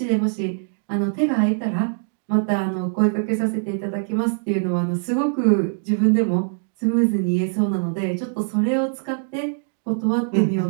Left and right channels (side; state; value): left; silent; digital silence